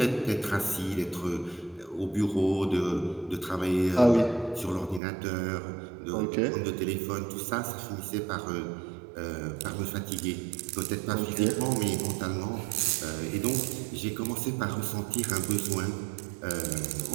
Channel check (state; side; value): drops out; left; at 5.0 s